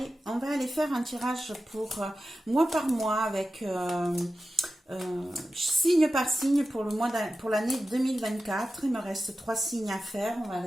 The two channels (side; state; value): both; normal; correlation 0.93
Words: on va aller faire un tirage pour mois par mois avec signe par signe pour le mois pour l'année 2024. Il me reste 3 signes à faire. On va